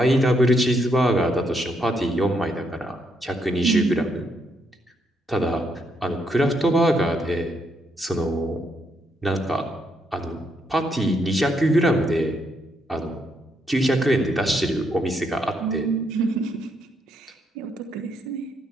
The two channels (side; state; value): both; normal; correlation 0.76